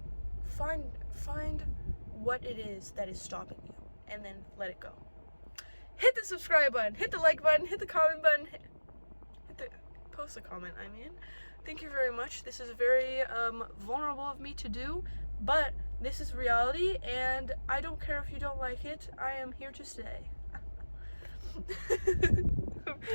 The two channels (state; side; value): inverted; both; correlation -1.00